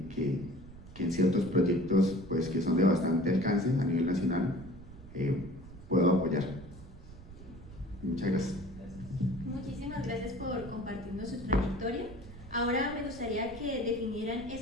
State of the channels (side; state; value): right; noise; rumble, 17 dB below the sound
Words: en ciertos proyectos pues, que son de bastante alcance a nivel nacional puedo apoyar. Muchas gracias. Muchísimas gracias por compartirnos su trayectoria. Ahora me gustaría que definieran